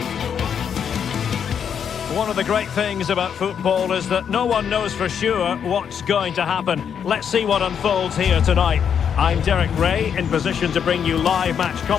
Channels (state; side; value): quieter; right; 7.8 dB